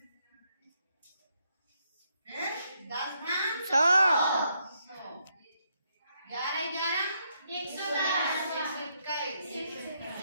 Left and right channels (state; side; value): inverted; both; correlation -0.77